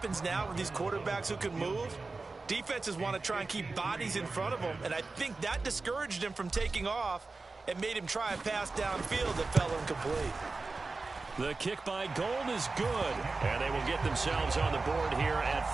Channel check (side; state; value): left; quieter; 3.7 dB